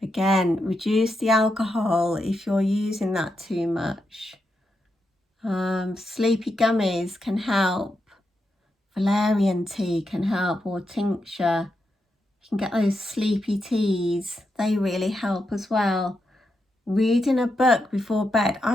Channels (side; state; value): both; normal; correlation 0.85